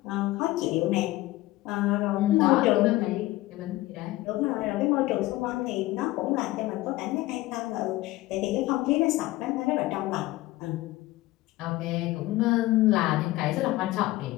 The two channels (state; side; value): quieter; right; 18.0 dB